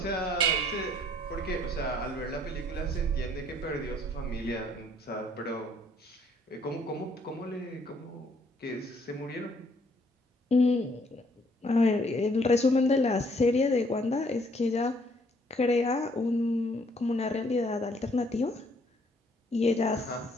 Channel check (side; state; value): both; normal; correlation 0.64